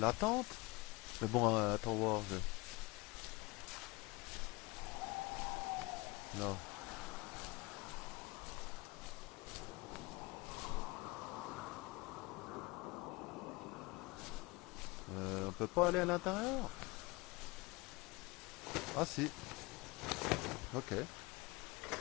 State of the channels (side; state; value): right; quieter; 24.0 dB